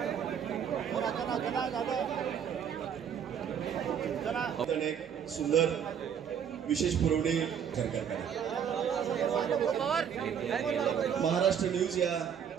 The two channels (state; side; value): quieter; left; 8.1 dB